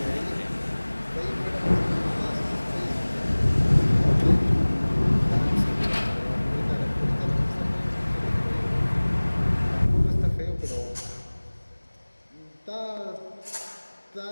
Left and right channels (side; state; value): both; inverted; correlation -1.00